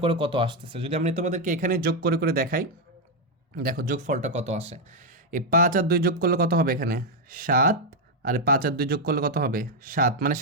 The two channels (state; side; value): normal; both; correlation 0.02